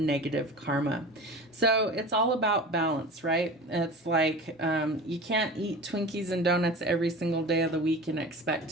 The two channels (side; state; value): both; normal; correlation 0.35